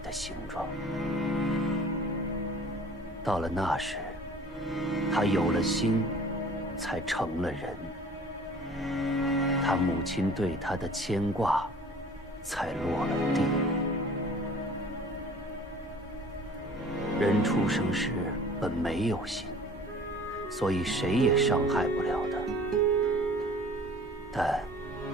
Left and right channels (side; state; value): both; normal; correlation 0.48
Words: 形状。到了那时，他有了心，才成了人。他母亲对他的牵挂，才落了地。人出生时本没有心，所以谁也伤害不了的。但